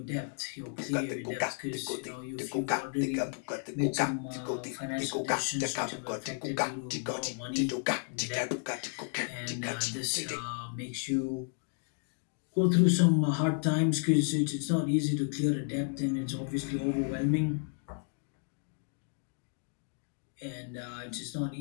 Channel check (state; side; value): silent; right; 56 dB below the other